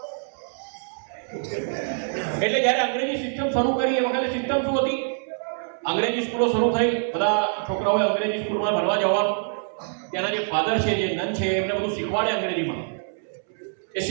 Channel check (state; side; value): silent; left; 62 dB below the other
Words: એટલે જ્યારે અંગ્રેજી સિસ્ટમ શરૂ કરી એ વખતે સિસ્ટમ શું હતી? અંગ્રેજી સ્કૂલો શરૂ થઈ, બધા છોકરાઓએ અંગ્રેજી સ્કૂલમાં ભણવા જવાનું. ત્યાંના જે ફાધર છે, જે નન છે, એમને બધું શીખવાડે અંગ્રેજીમાં. એ